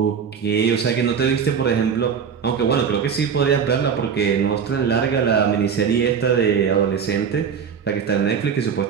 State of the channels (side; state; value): left; quieter; 6.9 dB